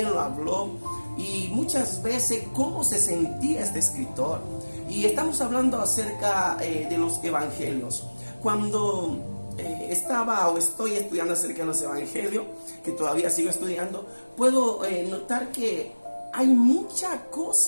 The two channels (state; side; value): inverted; both; correlation -1.00